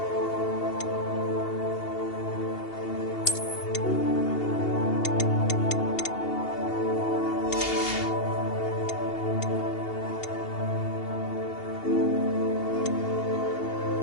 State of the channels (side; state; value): right; late; 2.8 ms